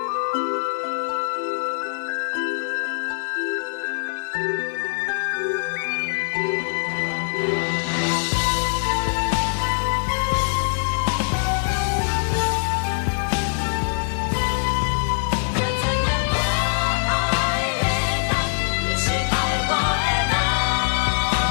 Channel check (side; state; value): right; silent; 56 dB below the other